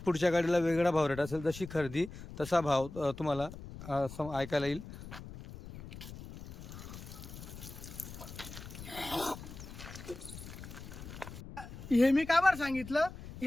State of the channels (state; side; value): noise; left; rumble, 13 dB below the sound